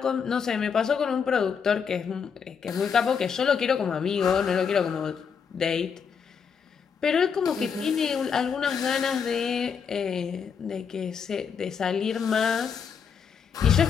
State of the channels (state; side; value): quieter; right; 6.6 dB